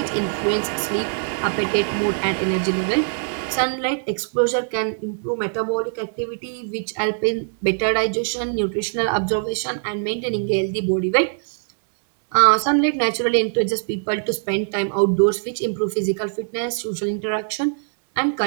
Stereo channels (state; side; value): silent; left; digital silence